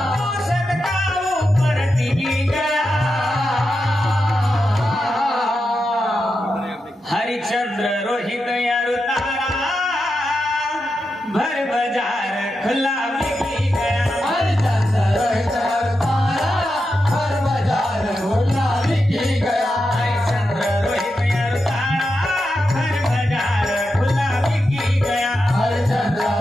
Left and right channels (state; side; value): normal; both; correlation 0.88